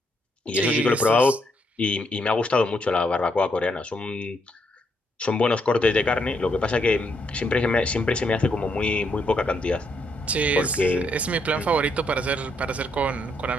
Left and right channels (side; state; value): both; normal; correlation 0.75